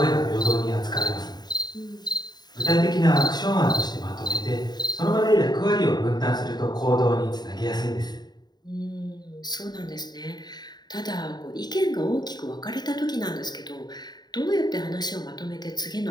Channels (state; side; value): late; right; 0.20 ms